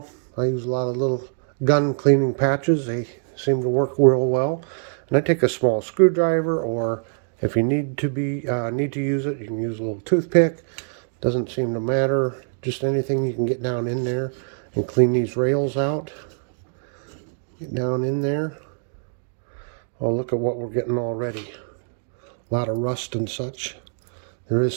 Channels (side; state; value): left; silent; digital silence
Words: I use a lot of little gun cleaning patches. They seem to work real well. And I take a small screwdriver, or if you need to use it, you can use a little toothpick. Doesn't seem to matter. Just anything you can get down in there and clean these rails out. Get down in there. Oh, look at what we're getting already. A lot of rust and such. There is